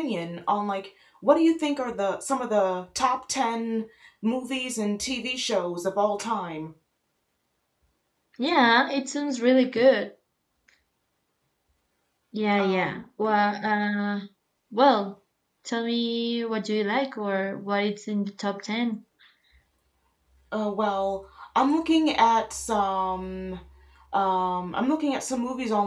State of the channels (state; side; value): identical; both; correlation 1.00